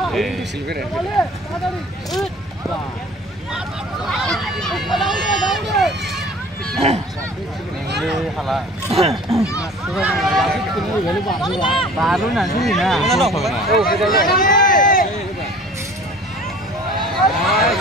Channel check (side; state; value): both; normal; correlation 0.46